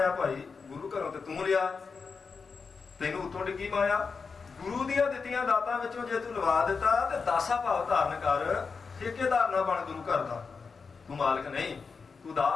ਭਾਈ? ਗੁਰੂ ਘਰੋਂ ਤੇ ਤੂੰ ਲਿਆ, ਤੈਨੂੰ ਉਤੋਂ ਡਿੱਗੀ ਮਾਇਆ। ਗੁਰੂ ਦੀਆਂ ਦਿੱਤੀਆਂ ਦਾਤਾਂ ਵਿੱਚੋਂ ਜੇ ਤੂੰ ਲਵਾ ਦਿੱਤਾ ਤੇ ਦਾਸਾ ਭਾਵ ਧਾਰਨ ਕਰ। ਠੇਕੇਦਾਰ ਨਾ ਬਣ ਗੁਰੂ ਘਰ ਦਾ, ਤੂੰ ਮਾਲਕ ਨਹੀਂ, ਤੂੰ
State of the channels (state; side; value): quieter; right; 5.1 dB